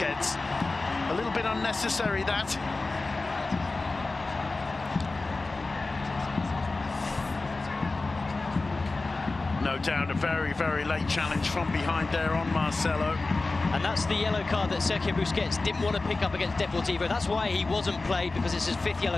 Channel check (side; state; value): right; quieter; 3.5 dB